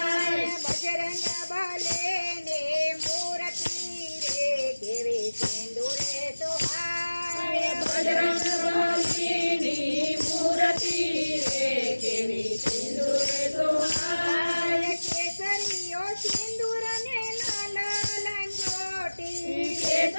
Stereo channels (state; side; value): inverted; both; correlation -1.00